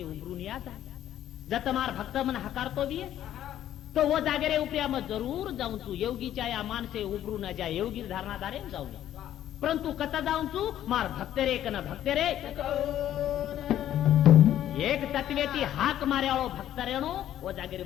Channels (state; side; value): quieter; right; 11.7 dB